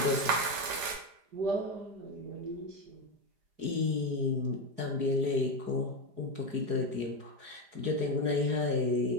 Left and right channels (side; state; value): left; late; 5.2 ms